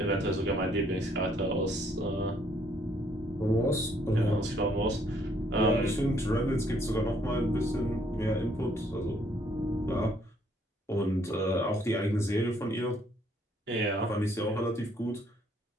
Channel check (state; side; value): normal; both; correlation 0.66